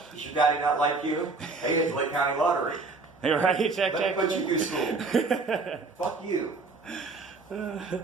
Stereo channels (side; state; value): left; quieter; 3.9 dB